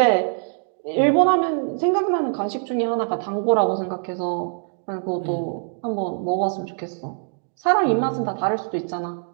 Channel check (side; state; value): left; silent; 63 dB below the other